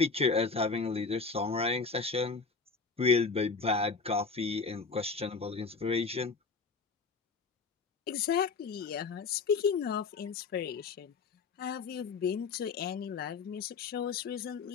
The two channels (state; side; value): quieter; right; 4.6 dB